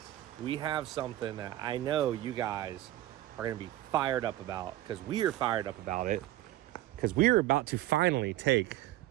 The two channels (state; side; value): quieter; left; 14.8 dB